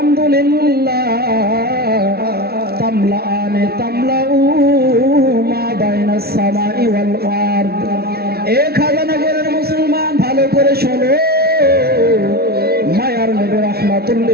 তামলাআনে তামলাউ মা বাইনাস সামাই ওয়াল আরদ। এক হাজারনগরের মুসলমান ভালো করে শোনো, মায়ার নবী রাহমাতুল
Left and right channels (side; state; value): left; late; 0.45 ms